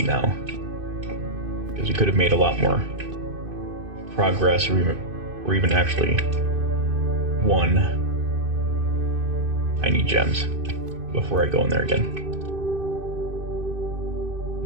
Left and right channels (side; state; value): left; late; 2.5 ms